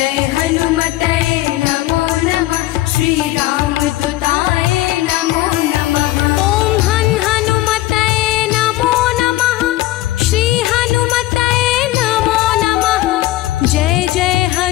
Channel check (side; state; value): right; quieter; 16.6 dB